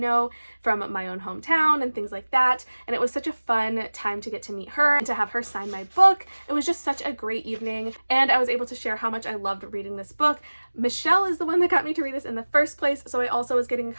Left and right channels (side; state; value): both; inverted; correlation -1.00